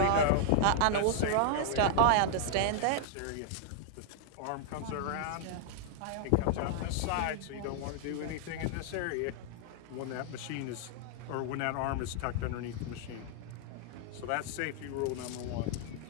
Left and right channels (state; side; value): different; both; correlation -0.01